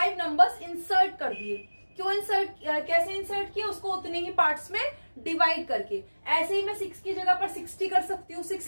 नंबर्स इंसर्ट कर दिए। क्यों इंसर्ट, कैसे इंसर्ट किया, उसको उतने ही पार्ट्स में डिवाइड करके। ऐसे ही मैं 6 की जगह पर 60 कर सकती हूँ,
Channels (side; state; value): both; inverted; correlation -1.00